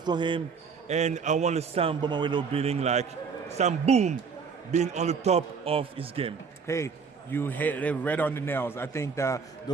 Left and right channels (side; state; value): left; quieter; 5.7 dB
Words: him. And I want Sam Bomawelo Boom being on the top of his game. Hey, you hit it right on the nails. I think that